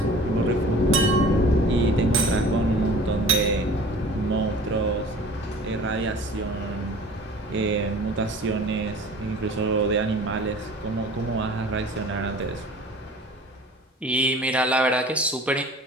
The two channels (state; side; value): normal; both; correlation 0.45